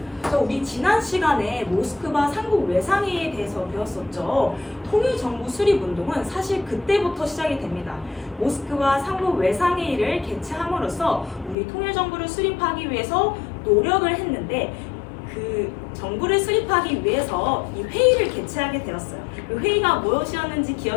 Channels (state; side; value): drops out; right; at 11.6 s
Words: 우리 지난 시간에 모스크바 삼국 외상회의에 대해서 배웠었죠. 통일정부 수립 운동은 사실 그때부터 시작이 됩니다. 모스크바 삼국 외상회의를 개최함으로써 우리 통일정부를 수립하기 위해서 노력을 했는데 그 정부를 수립하기 위해서 이 회의를 개최하게 되었어요. 그 회의가 무엇이었는지